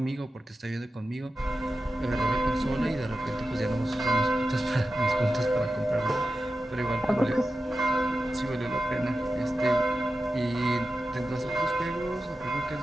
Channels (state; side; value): normal; both; correlation 0.92